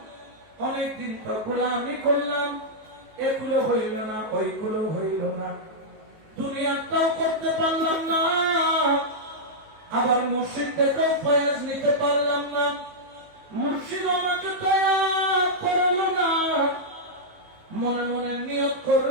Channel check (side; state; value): left; late; 19 ms